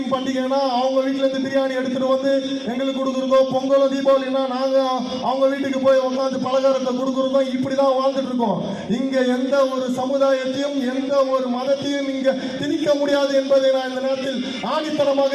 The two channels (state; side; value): identical; both; correlation 1.00